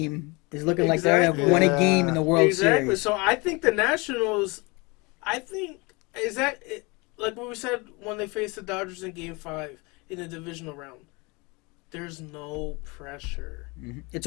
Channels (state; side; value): quieter; right; 27.1 dB